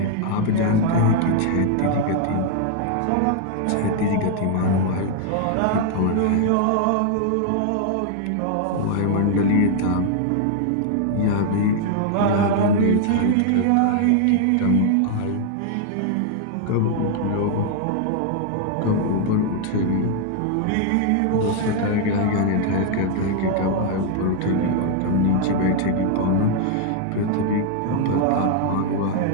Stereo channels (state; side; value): different; both; correlation 0.00